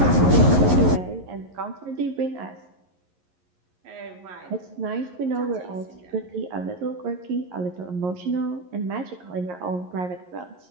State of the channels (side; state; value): left; late; 11 ms